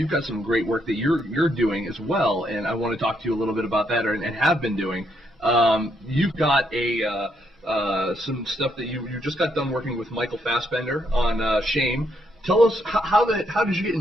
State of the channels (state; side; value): normal; both; correlation 0.75